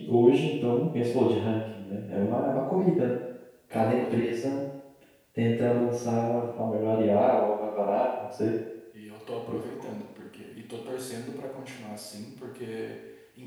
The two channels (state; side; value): identical; both; correlation 1.00